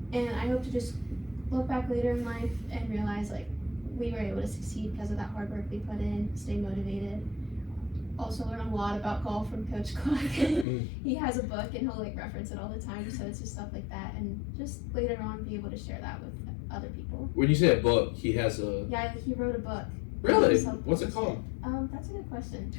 And I hope to just look back later in life and realize, like, we were able to succeed because of that hard work we put in, stay motivated. Also learn a lot about golf from Coach Clark. He has a book and he'll like reference it all the time, so it's just stuff like that, and just later on be able to share that with other people. When you say a book, he has a... Yeah, he wrote a book. Really? What's it called? That's a good question.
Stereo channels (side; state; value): right; drops out; at 10.7 s